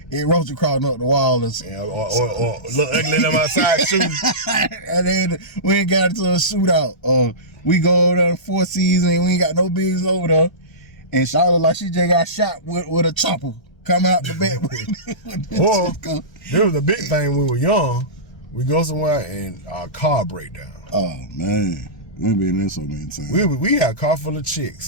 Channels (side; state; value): right; late; 1.3 ms